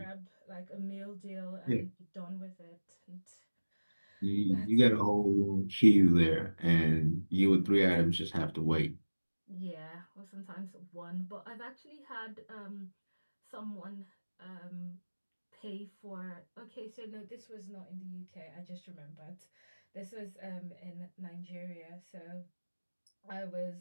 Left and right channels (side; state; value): both; inverted; correlation -1.00